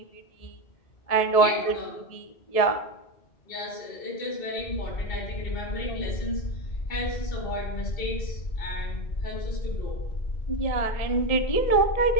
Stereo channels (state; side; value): late; right; 1.7 ms